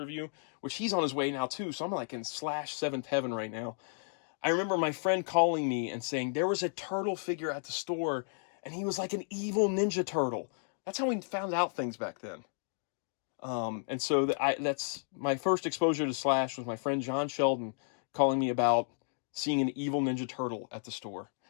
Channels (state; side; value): silent; right; 56 dB below the other